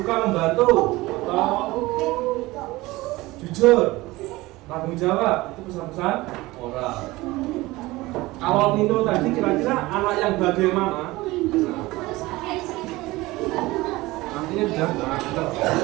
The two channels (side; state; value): left; quieter; 19.9 dB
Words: membantu atau jujur, tanggung jawab, itu pesan-pesan moral. Kalau Nino tadi kira-kira anak yang bagaimana? Artinya sudah